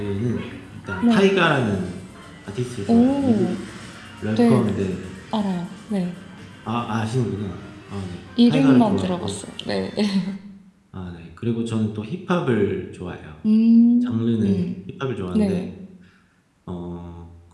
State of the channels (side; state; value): both; identical; correlation 1.00